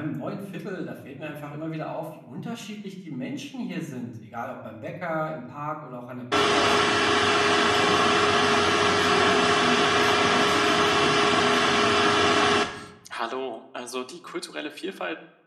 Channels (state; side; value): identical; both; correlation 1.00